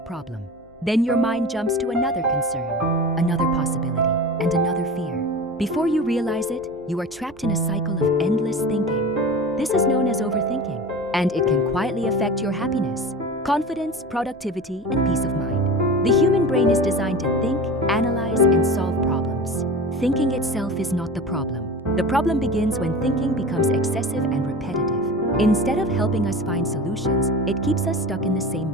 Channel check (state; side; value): noise; left; hum, 29 dB below the sound